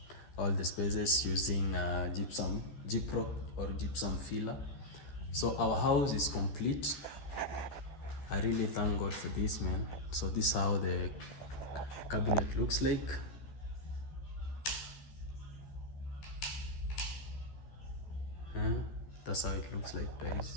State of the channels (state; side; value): late; right; 13 ms